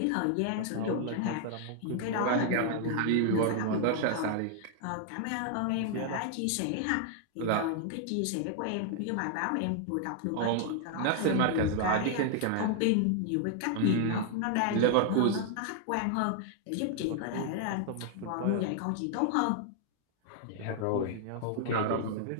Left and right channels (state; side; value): different; both; correlation 0.00